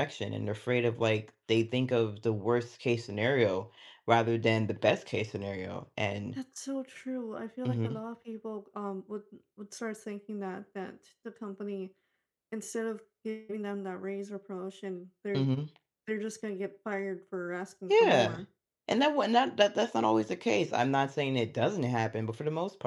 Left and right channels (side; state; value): both; identical; correlation 1.00